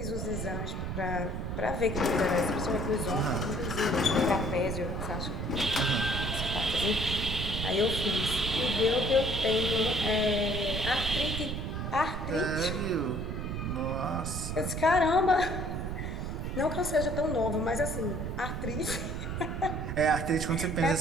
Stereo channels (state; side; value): noise; right; rumble, 3 dB below the sound